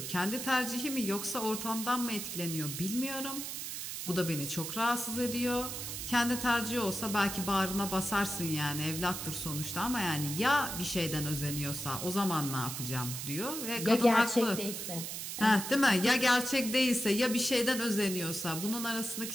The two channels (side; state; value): right; noise; hiss, 6 dB below the sound